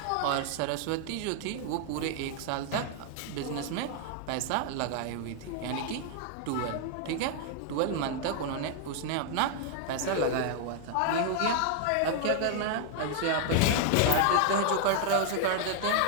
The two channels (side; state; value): both; different; correlation 0.00